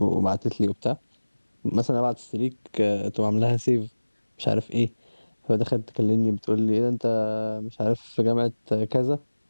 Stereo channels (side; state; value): both; inverted; correlation -1.00